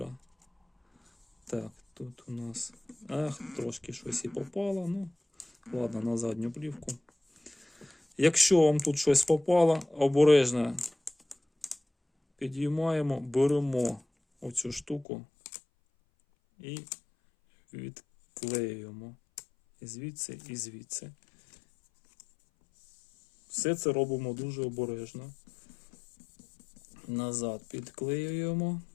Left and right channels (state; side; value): drops out; right; at 15.1 s